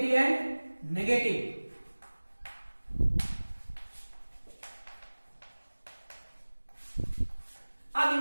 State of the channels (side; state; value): both; inverted; correlation -1.00